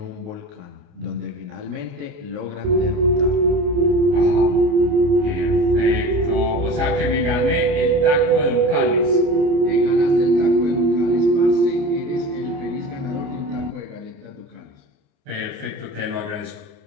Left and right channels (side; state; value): left; late; 29 ms